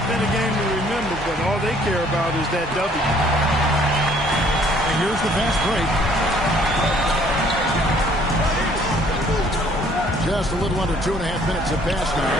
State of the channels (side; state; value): both; normal; correlation 0.60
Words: been a game to remember, but all they care about is that W. And here's the fast break. Just a little under 2.5 minutes have passed now.